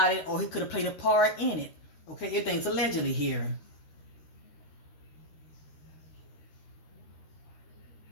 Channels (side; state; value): right; late; 13 ms